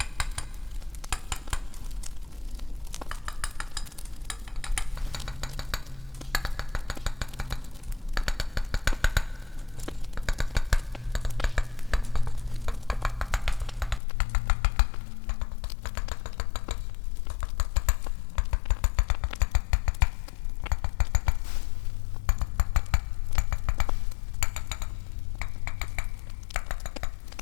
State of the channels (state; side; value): drops out; right; at 14.0 s